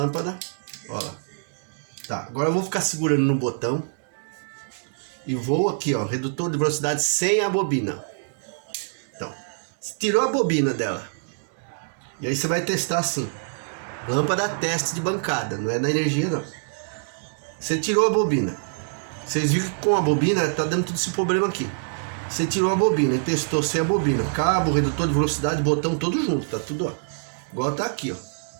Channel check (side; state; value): left; silent; digital silence